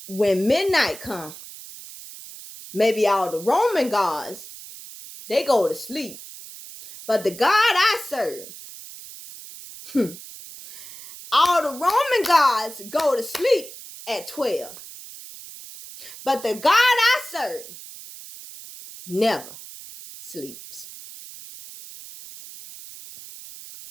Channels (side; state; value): right; noise; hiss, 15 dB below the sound